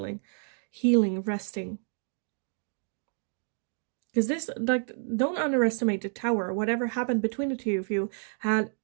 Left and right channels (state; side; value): silent; left; 55 dB below the other